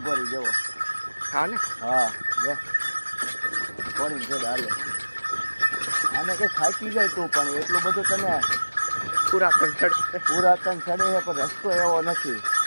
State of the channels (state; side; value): inverted; both; correlation -1.00